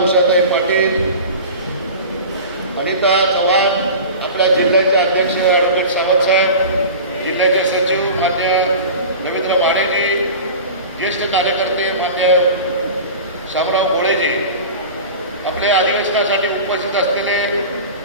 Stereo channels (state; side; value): inverted; both; correlation -0.34